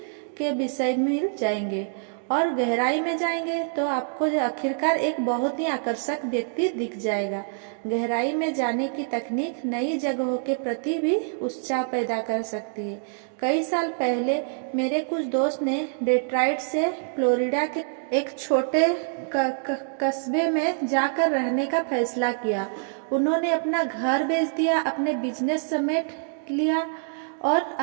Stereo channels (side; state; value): left; silent; digital silence